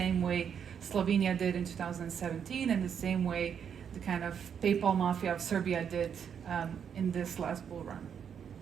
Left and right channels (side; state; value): left; quieter; 7.8 dB